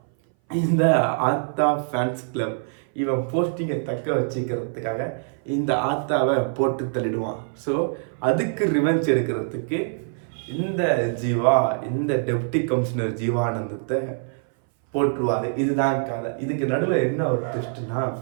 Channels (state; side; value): silent; left; 59 dB below the other